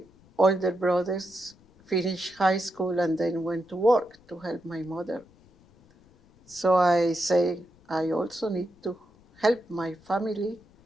older brothers finished high school and then went to work to help my mother. So I say I also need to help my family,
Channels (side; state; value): left; noise; rumble, 29 dB below the sound